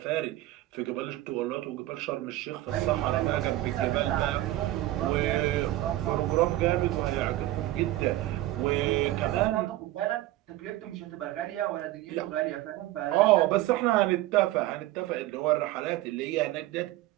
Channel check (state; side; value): quieter; left; 16.0 dB